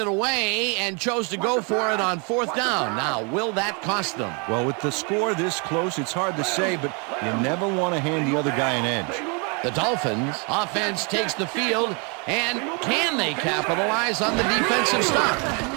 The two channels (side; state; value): left; quieter; 33.9 dB